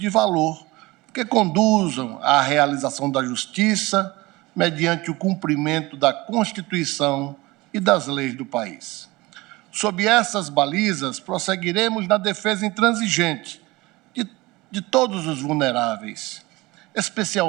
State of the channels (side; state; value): left; quieter; 21.3 dB